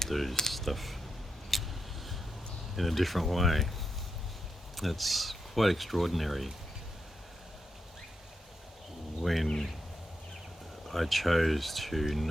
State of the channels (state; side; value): normal; both; correlation 0.85